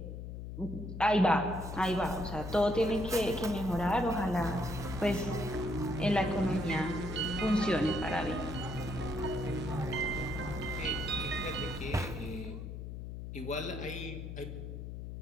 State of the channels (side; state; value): left; noise; hum, 8 dB below the sound